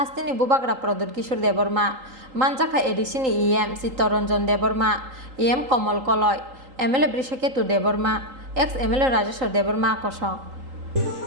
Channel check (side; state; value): left; late; 3.8 ms